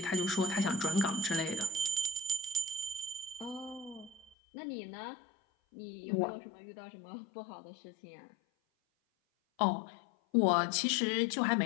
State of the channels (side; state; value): right; drops out; at 4.4 s